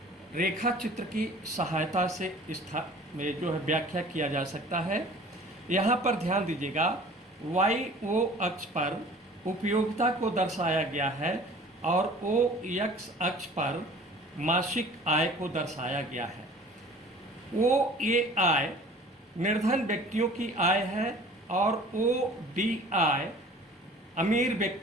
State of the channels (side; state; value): both; normal; correlation 0.47